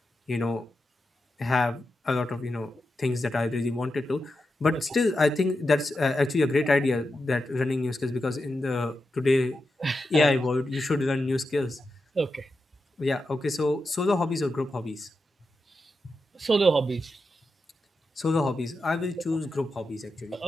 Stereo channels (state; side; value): normal; both; correlation 0.89